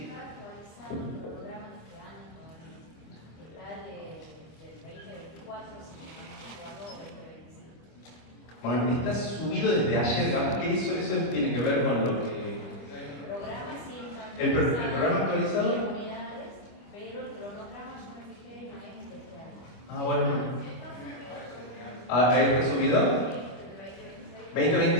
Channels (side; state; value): right; late; 25 ms